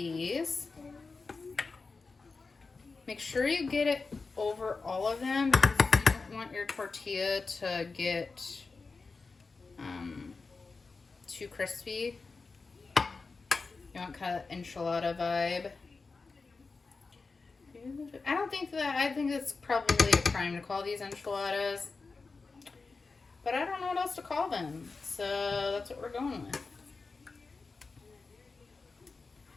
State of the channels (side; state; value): right; quieter; 4.2 dB